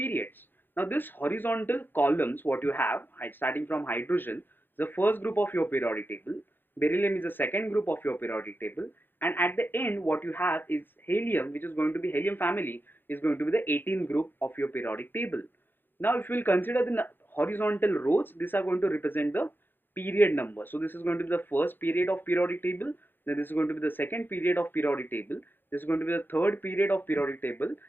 Now this horizontal columns what you have starting from hydrogen, the first group of your periodic table, beryllium is the second group of your periodic table, and at the end what you have is helium, which is going to be helium family, is going to be the 18th group of your periodic table. Now if we will consider the horizontal rows, these are going to represent the period number. So this is going to be the first period of periodic table, then this is going to be the second period of periodic table, this is going to be the third period of periodic table,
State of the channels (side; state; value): right; late; 0.097 ms